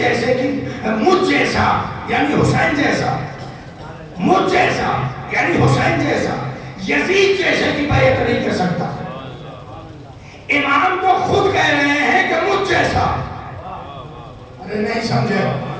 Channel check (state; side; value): identical; both; correlation 1.00